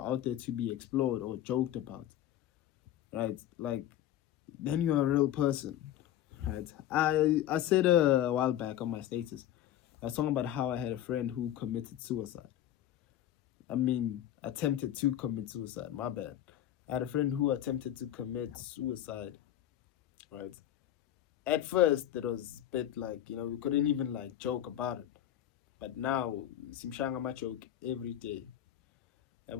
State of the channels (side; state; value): right; quieter; 11.9 dB